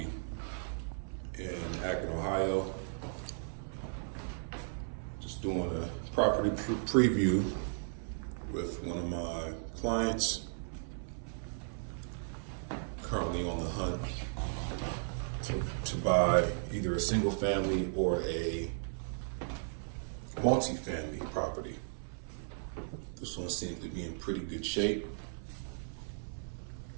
in Akron, Ohio. Just doing a property preview with one of my clients. Currently on the hunt to buy either a single family or a multi-family property. This one seems to be in pretty good shape,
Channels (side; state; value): left; silent; 54 dB below the other